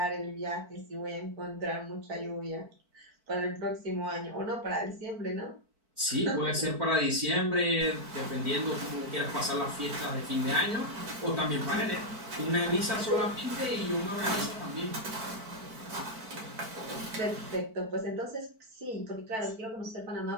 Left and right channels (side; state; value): left; late; 4.5 ms